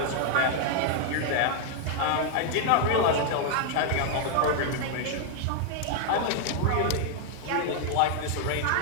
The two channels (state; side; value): different; both; correlation 0.00